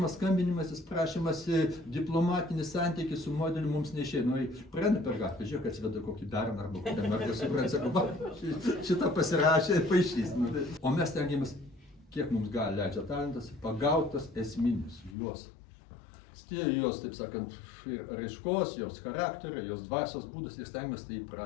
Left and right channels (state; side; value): drops out; right; at 15.2 s